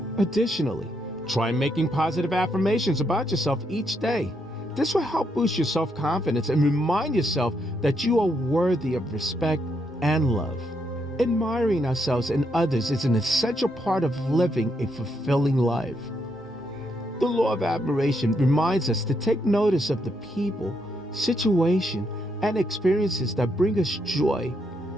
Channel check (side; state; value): both; normal; correlation 0.78